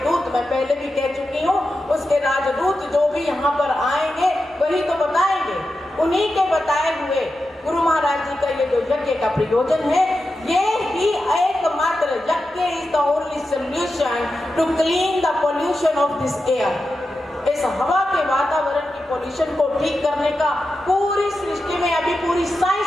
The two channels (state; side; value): normal; both; correlation 0.90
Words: मैं पहले भी कह चुकी हूँ, उसके राजदूत जो भी यहाँ पर आएंगे वही तो बताएंगे। उन्हीं के बताए हुए गुरु महाराज जी का ये जो यज्ञ का प्रयोजन है, ये ही एकमात्र यज्ञ is the only solution to clean the pollution of this air. इस हवा के वातावरण की पोल्यूशन को ठीक करने का पूरी सृष्टि में, अभी पूरी